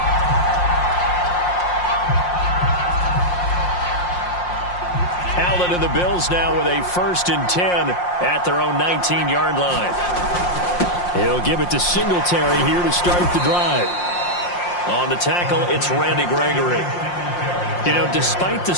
Allen and the Bills now with a 1st and 10 at their own 19-yard line. He'll give it to Singletary here to start the drive. On the tackle, it's Randy Gregory. You know, despite the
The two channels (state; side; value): late; right; 5.6 ms